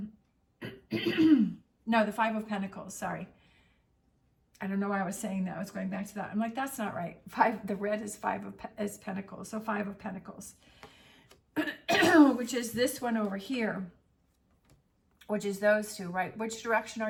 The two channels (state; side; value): identical; both; correlation 1.00